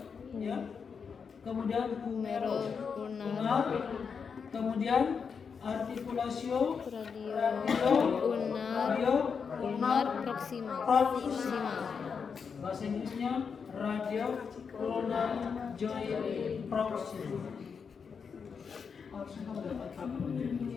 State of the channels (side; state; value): right; quieter; 6.0 dB